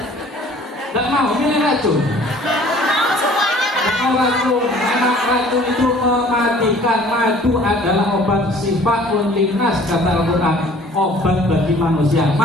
mau milih racun. Mau racun, karena racun itu mematikan. Madu adalah obat sifat linnas kata Al-Quran, obat bagi manusia.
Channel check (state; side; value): normal; both; correlation 0.52